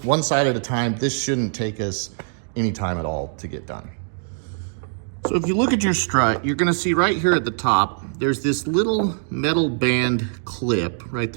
side at a time. This shouldn't take us any time at all to get done. So if you look at your strut, you're gonna see right here at the top, there's this little metal band clip right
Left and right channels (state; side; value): silent; left; digital silence